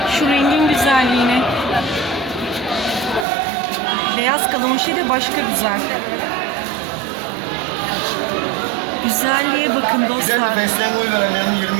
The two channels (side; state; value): left; drops out; at 3.2 s